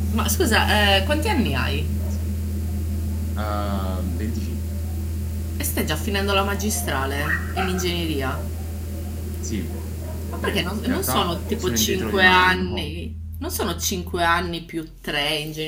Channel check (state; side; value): identical; both; correlation 1.00